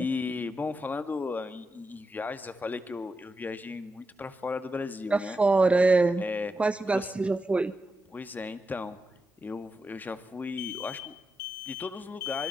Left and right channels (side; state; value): both; normal; correlation 0.88